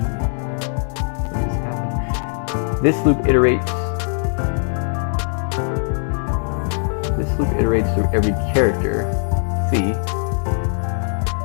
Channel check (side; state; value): right; silent; digital silence